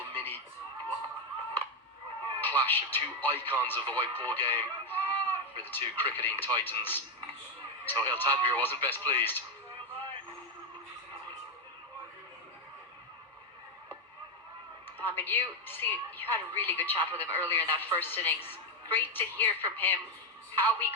mini clash of two icons of the white ball game for the two cricketing titans. So Tanvir wasn't best pleased. I mean, you had a really good chat with him earlier in that first innings. Great to hear from him how he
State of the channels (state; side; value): normal; both; correlation 0.06